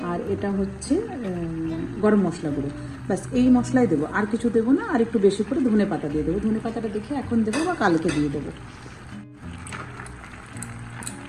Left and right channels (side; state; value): both; identical; correlation 1.00